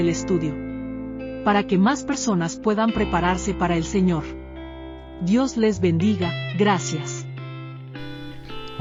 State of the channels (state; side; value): identical; both; correlation 1.00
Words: estudio, para que más personas puedan prepararse para el Señor. Dios les bendiga, gracias.